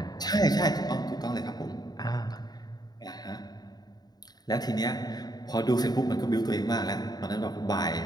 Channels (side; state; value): right; late; 0.19 ms